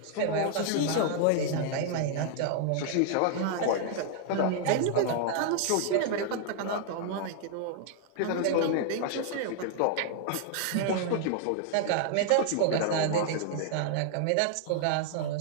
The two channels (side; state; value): both; different; correlation 0.00